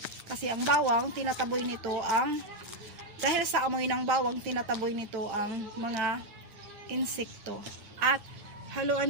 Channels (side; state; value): left; late; 9.9 ms